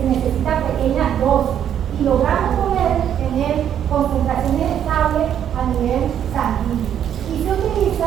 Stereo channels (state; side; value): quieter; left; 9.6 dB